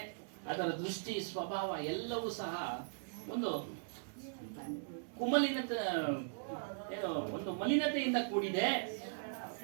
ಅದರ ದೃಷ್ಟಿ ಸ್ವಭಾವ ಎಲ್ಲವೂ ಸಹ ಒಂದು ಕುಮಲಿನತೆ, ಒಂದು ಮಲಿನತೆಯಿಂದ ಕೂಡಿದೆ.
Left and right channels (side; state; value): left; silent; digital silence